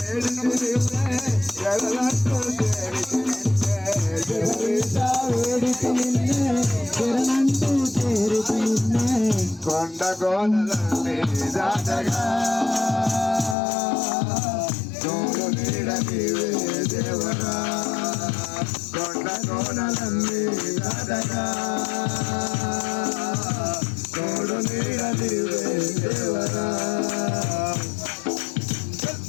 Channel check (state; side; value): drops out; right; at 13.6 s